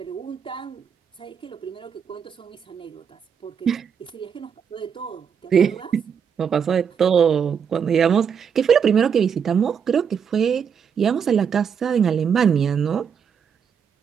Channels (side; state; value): left; quieter; 7.2 dB